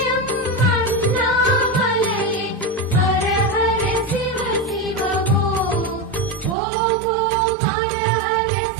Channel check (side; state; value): left; drops out; at 6.6 s